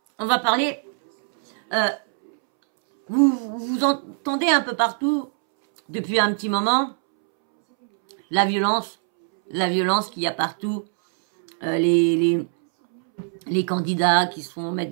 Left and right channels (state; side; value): silent; left; 64 dB below the other